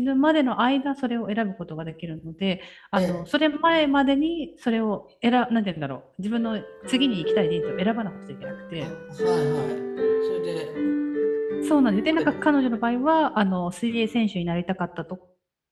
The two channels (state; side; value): identical; both; correlation 1.00